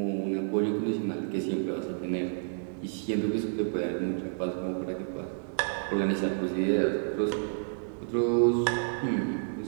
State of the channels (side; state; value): left; silent; digital silence